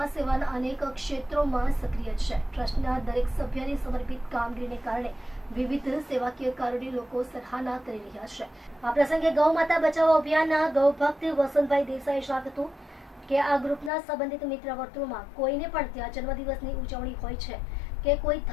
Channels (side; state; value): right; drops out; at 13.9 s